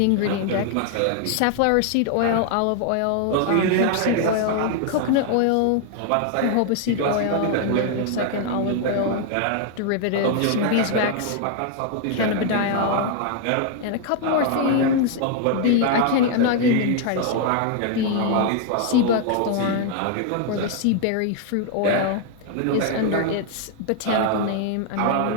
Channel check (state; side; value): different; both; correlation 0.00